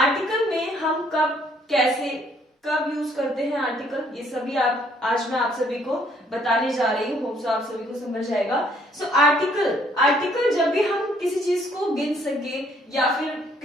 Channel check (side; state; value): both; normal; correlation 0.64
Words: में हम कब कैसे कब यूज करते हैं आर्टिकल, ये सभी आज मैं आप सभी को बताने जा रही हूँ। होप सो आप सभी को समझ जाएगा। सो आर्टिकल जब भी हम किसी चीज को गिन सके या फिर